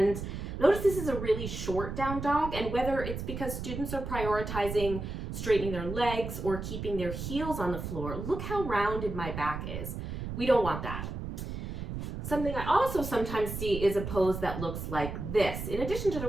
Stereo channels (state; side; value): noise; right; rumble, 6 dB below the sound